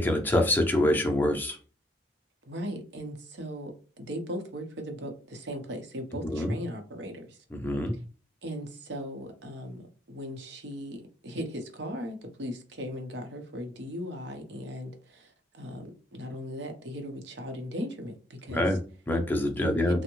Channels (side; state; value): both; normal; correlation 0.69